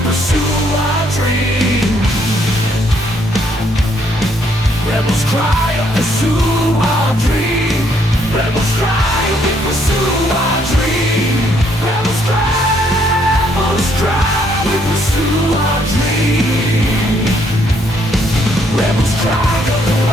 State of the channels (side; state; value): both; normal; correlation 0.69